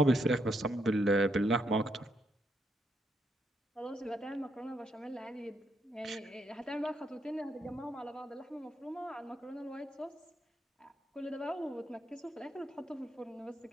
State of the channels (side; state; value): both; normal; correlation 0.77